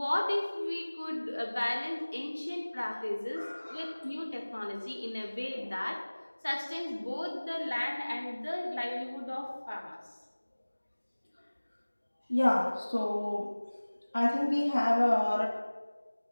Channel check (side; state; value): both; inverted; correlation -1.00